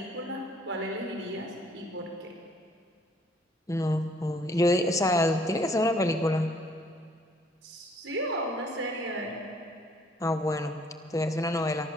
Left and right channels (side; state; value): both; normal; correlation 0.61